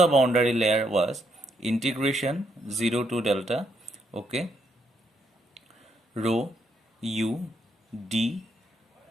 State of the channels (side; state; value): both; normal; correlation 0.76